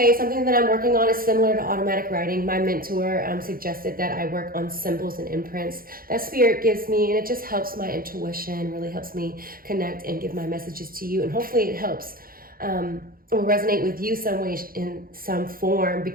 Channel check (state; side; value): late; left; 0.42 ms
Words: something that I'm working on is similar to automatic writing. My mentor suggested that I work on symbols and imprints that Spirit gives me, and it just helps my intuition, really helps me connect and give my messages to you. And hopefully it helps or resonate with you some way in some form,